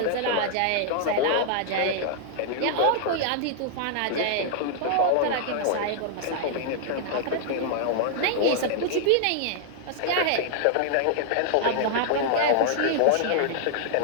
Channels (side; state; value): both; different; correlation -0.01